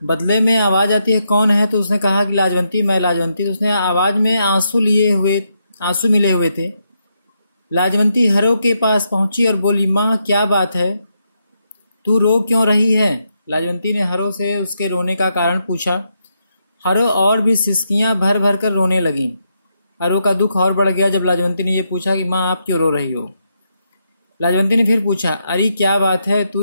बदले में आवाज आती है, कौन है। तो उसने कहा कि लाजवंती, मैं लाजवंती। तो उसने आवाज में आंसू मिले हुए थे। लाजवंती हरो के पास पहुंची और बोली, माँ क्या बात है, तू रो क्यों रही है। लाजवंती ने हरो से उसके रोने का कारण पूछा। हरो और भी सिसकियां भर भर कर रोने लगी। हरो का दुख और बढ़ गया जब लाजवंती ने यह पूछा कि माँ आप क्यों रो रही हो। लाजवंती ने फिर पूछा, अरे क्या बात है,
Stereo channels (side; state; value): both; inverted; correlation -0.81